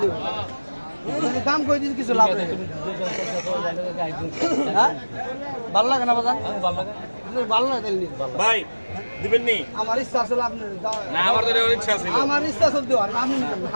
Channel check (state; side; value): inverted; both; correlation -1.00